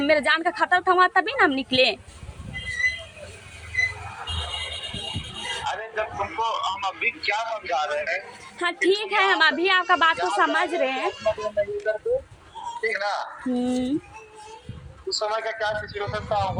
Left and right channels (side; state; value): both; identical; correlation 1.00